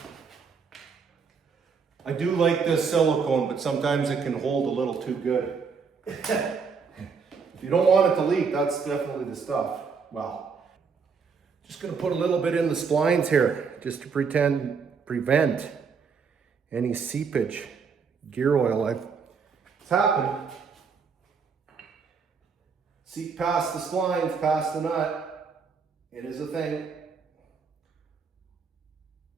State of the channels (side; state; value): left; quieter; 5.6 dB